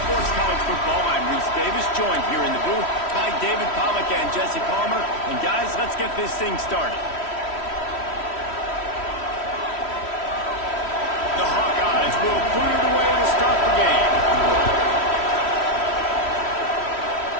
College Football, I'm Reese Davis, joined here in the booth by David Pollack and Jesse Palmer. And guys, let's get this thing started. The Hawkeyes will clear the way to start the game.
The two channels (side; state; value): right; late; 3.1 ms